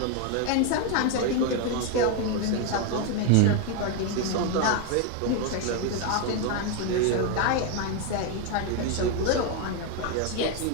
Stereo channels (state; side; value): different; both; correlation 0.01